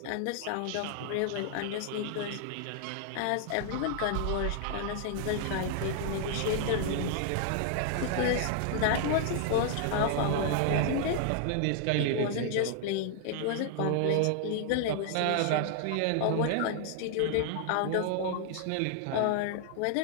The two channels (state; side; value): different; both; correlation 0.00